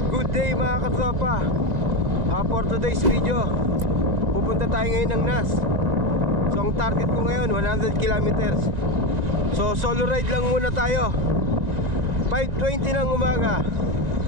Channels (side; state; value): left; late; 2.0 ms